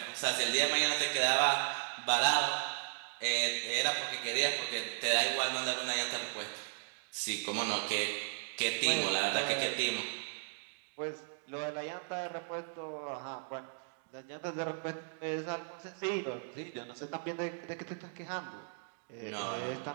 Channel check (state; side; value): silent; left; digital silence